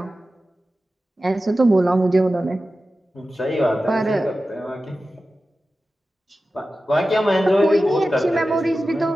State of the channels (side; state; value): both; normal; correlation 0.94